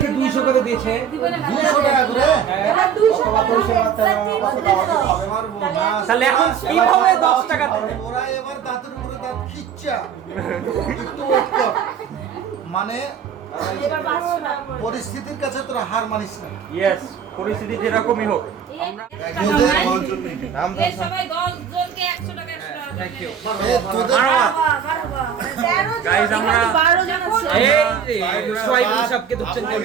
200 করে দিয়েছে। 200 টাকা করে এবার 200 তাহলে এখন কিভাবে 10 টাকা দেবে? ওরা এবার দাঁতের উপরে দাঁত খিচ্চা একটু ওয়েট কর। মানে পরিস্থিতির কাছে তোরা হার মানিস না। ইয়েস, পরিস্থিতি যেরকমই হোক। সবাই 10 জনকে 100 টাকা 100 টাকা। Thank you. তোদের গাইস, আমরা সবকে ধরছেন কেন?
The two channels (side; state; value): left; quieter; 7.8 dB